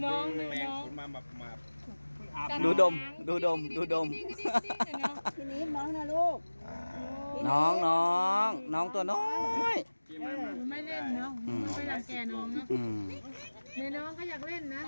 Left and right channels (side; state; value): both; inverted; correlation -1.00